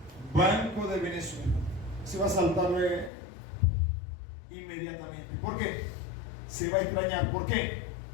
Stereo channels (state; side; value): drops out; right; at 3.1 s